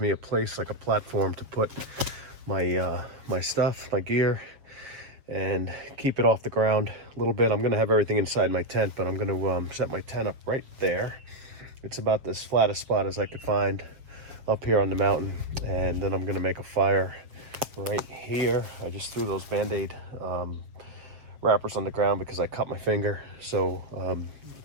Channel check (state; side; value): late; left; 7.5 ms